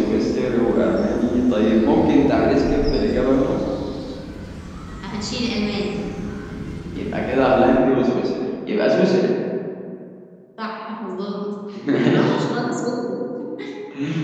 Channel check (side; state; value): both; identical; correlation 1.00